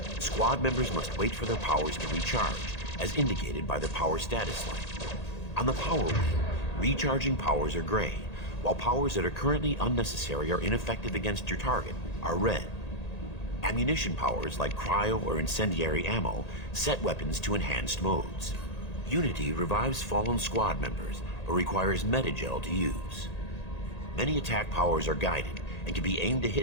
squad members must wait for their powers to recharge, as indicated by the power status light. On the power wheel, recharging powers are gray, while powers that are currently unnecessary or ineffective against your target are red. Ammunition powers like cryo or incendiary ammo set weapons to enhanced modes. Unity revives fallen squad members, but requires metagel to use. Many attack powers are guided, and can be aimed to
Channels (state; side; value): late; right; 1.8 ms